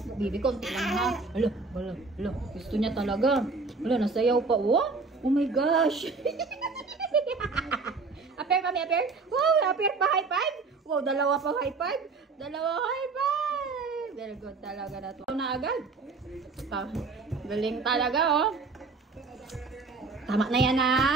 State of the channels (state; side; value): quieter; left; 4.2 dB